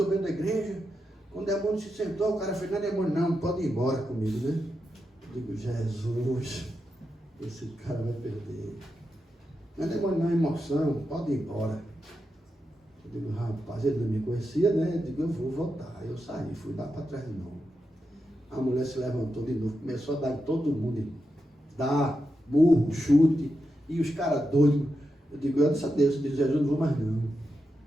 da igreja. Quando o demônio se sentou, o cara fez, não é demônio não, pode ir embora comigo, né? Eu digo, Jesus, esse cara vai perder. Não é demônio não, é emoção, pode ir embora. Eu digo, rapaz, ele não me conhecia, né? Eu digo, eu vou voltar. Aí eu saí, fui lá para trás de novo. A mulher se levantou de novo, começou a dar em todo mundo. Dar, murro, chute. E os caras doidos. Eu digo, eu disse a Deus, eu disse, Jesus, não vou mais não.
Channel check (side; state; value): both; normal; correlation 0.87